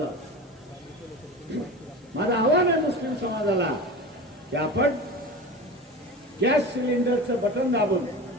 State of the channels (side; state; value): both; normal; correlation 0.31